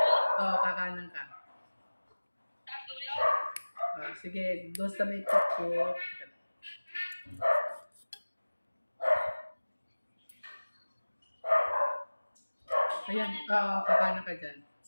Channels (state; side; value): inverted; both; correlation -1.00